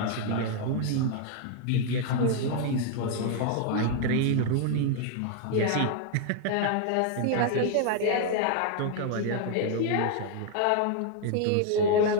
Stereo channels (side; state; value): both; different; correlation 0.00